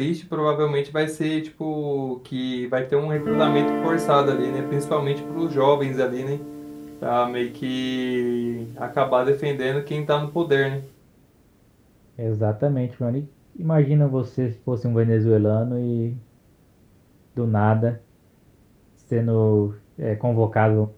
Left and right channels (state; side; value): identical; both; correlation 1.00